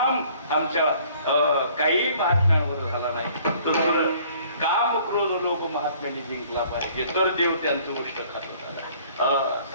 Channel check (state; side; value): inverted; both; correlation -0.57